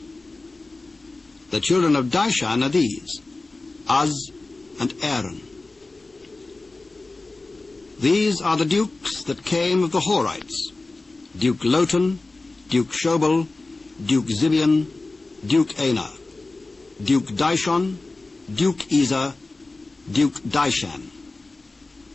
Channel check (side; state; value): right; quieter; 3.3 dB